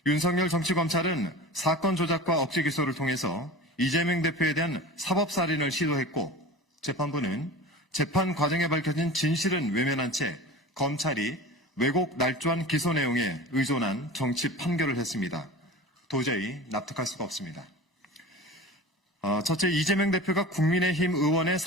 윤석열 정치검찰은 사건 조작과 억지 기소를 통해서 이재명 대표에 대한 사법살인을 시도했고, 재판부는 재판 과정에 밝혀진 진실은 외면한 채 검찰이 왜곡 날조한 기소 내용에 의존한 정치 판결을 했습니다. 도저히 납득할 수가 없습니다. 첫째, 이재명 대표가 국민의힘 의원의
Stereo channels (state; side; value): normal; both; correlation 0.34